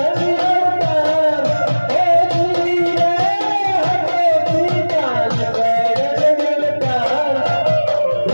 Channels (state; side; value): inverted; both; correlation -1.00